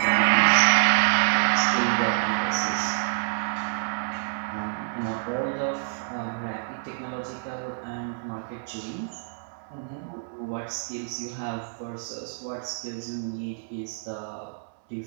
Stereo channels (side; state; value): left; silent; 60 dB below the other